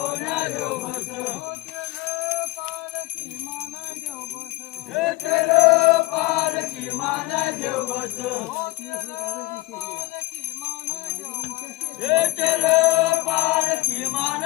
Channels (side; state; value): right; quieter; 20.9 dB